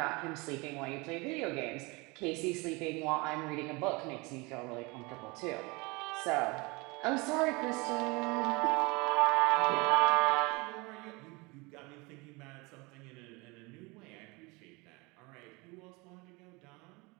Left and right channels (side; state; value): left; quieter; 26.2 dB